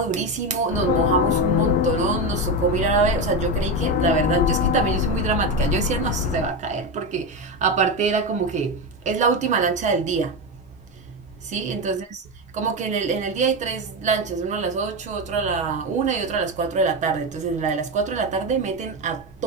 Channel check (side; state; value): both; normal; correlation 0.14